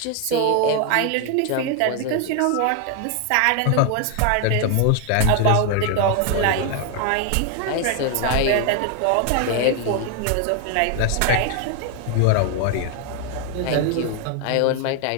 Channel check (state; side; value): different; both; correlation 0.01